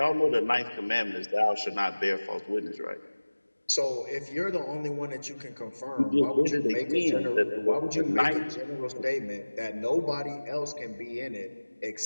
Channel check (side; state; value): both; inverted; correlation -1.00